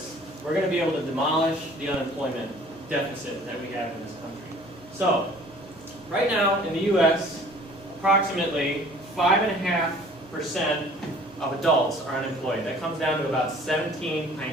we're going to be able to demolish the unemployment deficit that we have in this country. So right now in the U.S., approximately 5.5% of adults are unemployed. That comes down to about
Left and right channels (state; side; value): normal; both; correlation 0.51